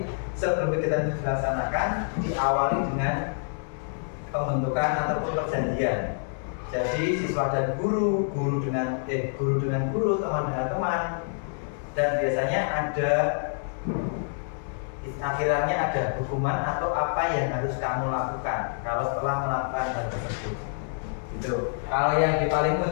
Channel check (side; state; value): right; silent; digital silence